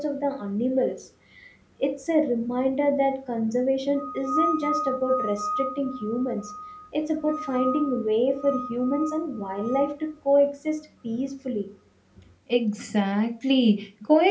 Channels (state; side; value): identical; both; correlation 1.00